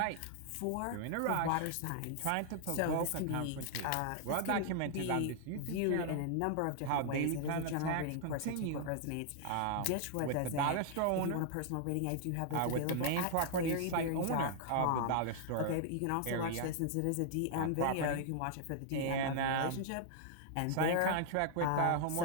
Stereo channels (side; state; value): both; different; correlation -0.01